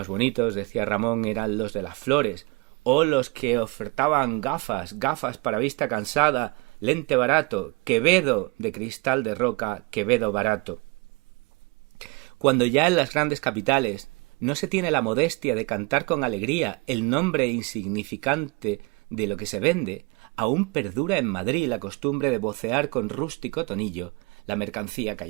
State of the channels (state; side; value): quieter; left; 26.7 dB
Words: bonitos, decía Ramón, eran los de las flores, o los que ofertaban gafas para vista cansada, lente barato, Quevedo de cristal de roca, Quevedo barato. Cuando ya en las grandes capitales no se tiene la modestia de cantar con alegría el nombre insignificante de lo que se vende, aún perdura en Madrid la costumbre de vocear con rústico tonillo la mercancía